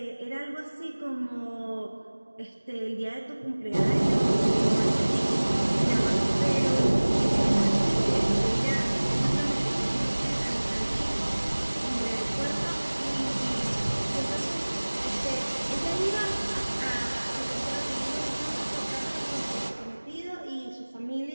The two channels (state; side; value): inverted; both; correlation -1.00